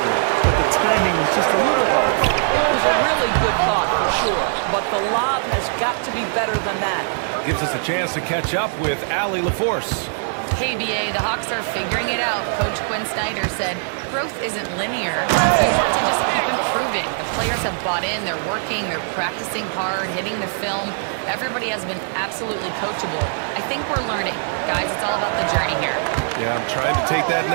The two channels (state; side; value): silent; left; digital silence